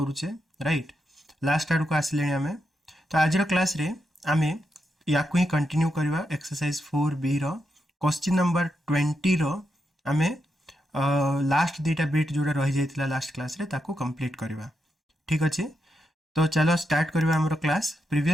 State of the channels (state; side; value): normal; both; correlation 0.84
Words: राइट। लास्ट आड़ को आसिले आम तो आज क्लास रे आम या ही कंटिन्यू करवा एक्सरसाइज 4B क्वेश्चन नंबर 20 आम लास्ट दुईटा बिट जोड़ा रही जाता लास्ट क्लास रे ताको कंप्लीट करवा। ठीक अच्छे, तो चलो स्टार्ट करवा हमरो क्लास।